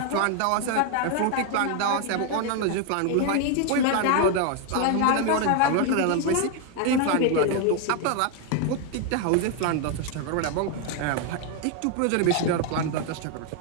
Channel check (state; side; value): different; both; correlation 0.01